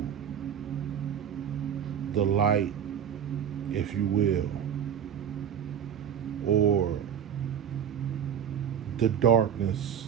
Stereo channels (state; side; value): quieter; left; 8.7 dB